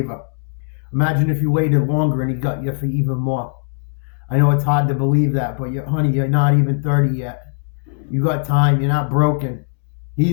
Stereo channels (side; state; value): right; silent; digital silence